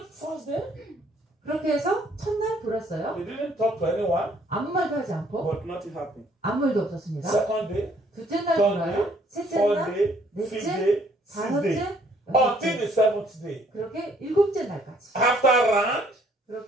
first day. 그렇게 해서 첫날 돌았어요. They didn't talk to anyone, 아무 말도 하지 않고 but nothing happened. 아무 일도 없었습니다. Second day, 둘째 날 third 돌아요. day, 셋째 fourth 날, day, fifth 넷째, day, sixth day, 다섯째, until 여섯째. the 7th day. 그렇게 7째 날까지. After round,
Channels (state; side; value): normal; both; correlation 0.63